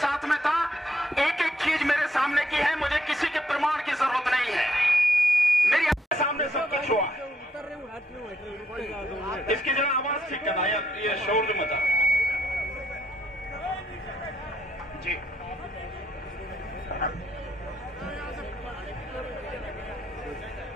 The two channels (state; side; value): normal; both; correlation 0.74